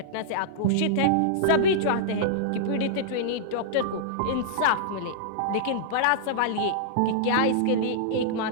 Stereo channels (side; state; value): both; different; correlation -0.02